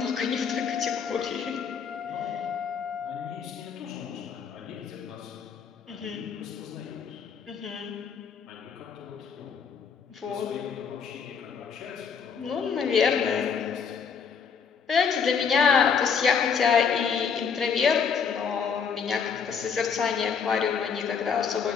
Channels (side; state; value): right; quieter; 6.5 dB